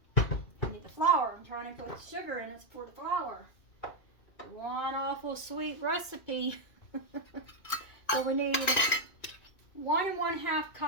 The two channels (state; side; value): late; right; 2.5 ms